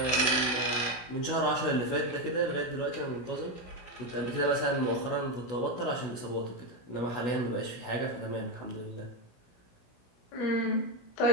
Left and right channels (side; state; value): right; late; 17 ms